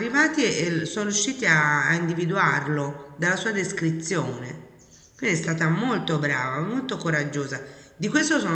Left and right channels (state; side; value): identical; both; correlation 1.00